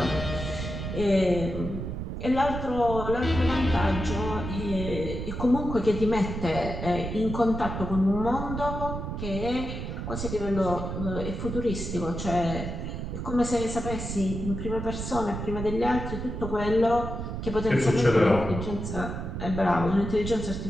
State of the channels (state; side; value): noise; right; rumble, 5 dB below the sound